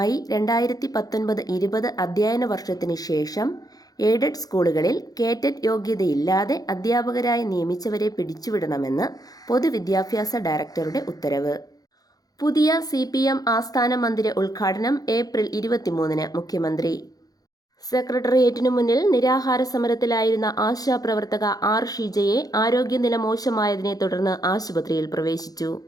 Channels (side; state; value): right; late; 0.18 ms